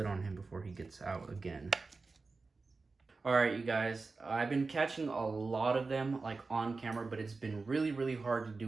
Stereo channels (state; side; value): quieter; left; 4.0 dB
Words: on him before he gets out again. All right, you guys, I've been catching a lot of them like on camera, but it's been really, really hard to